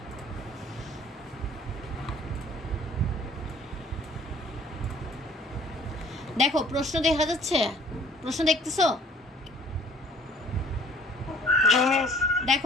দেখো, প্রশ্ন দেখা যাচ্ছে? প্রশ্ন দেখতেছো?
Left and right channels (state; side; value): normal; both; correlation 0.54